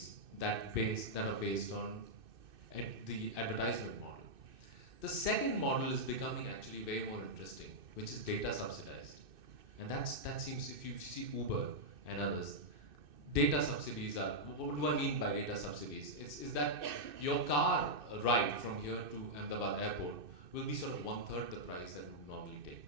that are based on the advertisement model. The second model is becoming actually way more interesting, which is data subsidized. And that seems, if you see Uber and others, data subsidies are, what do I mean by data subsidies? Is that your car ride from here to Ahmedabad airport will be sort of 1/3 the price that would normally take,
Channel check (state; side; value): late; left; 2.6 ms